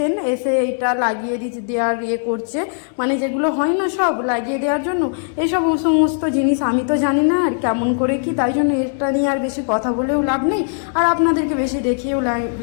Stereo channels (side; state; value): right; silent; 66 dB below the other